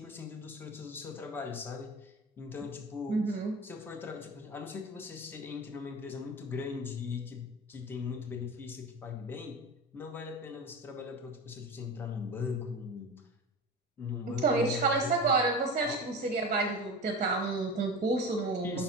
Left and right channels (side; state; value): both; normal; correlation 0.30